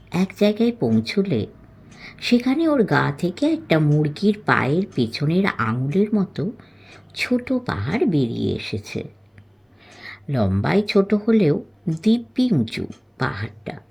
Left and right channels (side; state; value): both; identical; correlation 1.00